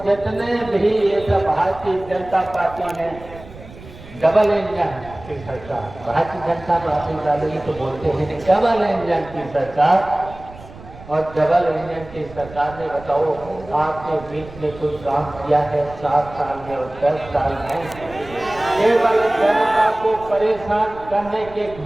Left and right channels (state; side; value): noise; right; rumble, 18 dB below the sound